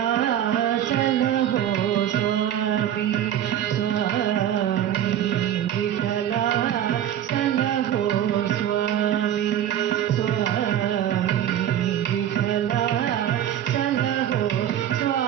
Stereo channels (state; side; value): quieter; left; 10.8 dB